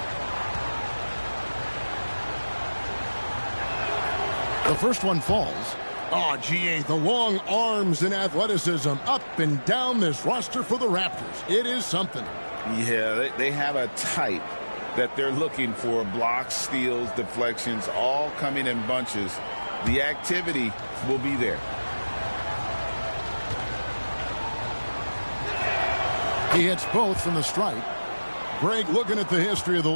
The first one falls. Oh, GA, the long arms and athleticism up and down this roster for the Raptors. It is something. Yeah, they have a type that they're looking for. Blocks, steals, deflections, all coming in bunches. The activity will be there. He hits both from the stripe. Greg, looking at the history of the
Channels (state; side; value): inverted; both; correlation -1.00